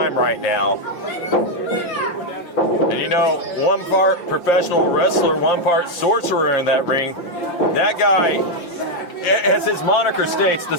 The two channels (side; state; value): right; late; 5.8 ms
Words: right now. And you know, one part professional wrestler, one part sorcerer in that ring. That guy, as his moniker states, the